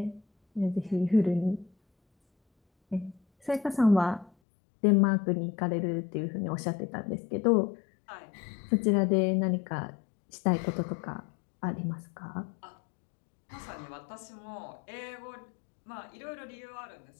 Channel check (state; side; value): drops out; right; at 4.3 s